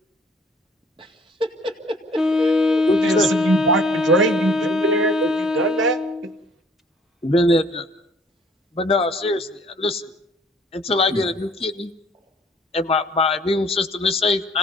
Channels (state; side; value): normal; both; correlation 0.57